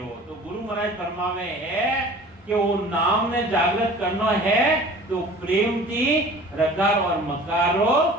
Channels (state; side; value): normal; both; correlation 0.45